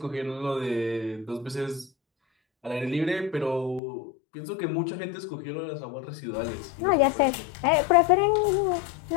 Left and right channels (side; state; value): right; drops out; at 3.8 s